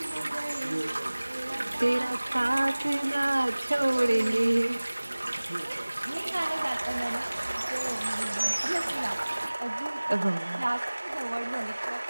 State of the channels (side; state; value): both; inverted; correlation -1.00